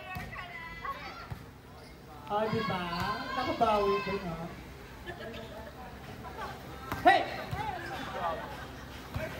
Oh, diba? Nakabawi ko, no? Hey!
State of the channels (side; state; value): both; identical; correlation 1.00